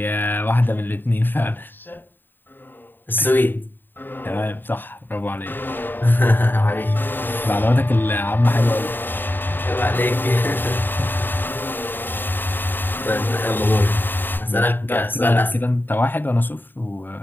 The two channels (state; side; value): late; right; 0.093 ms